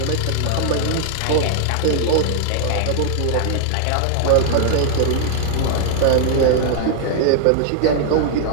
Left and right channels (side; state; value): both; different; correlation -0.01